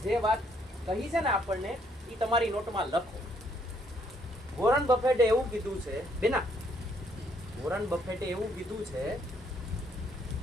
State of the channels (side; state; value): both; normal; correlation 0.69